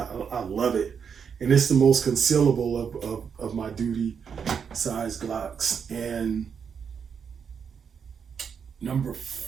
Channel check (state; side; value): quieter; left; 6.8 dB